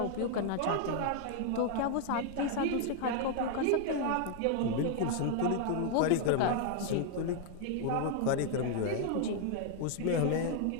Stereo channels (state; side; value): different; both; correlation 0.00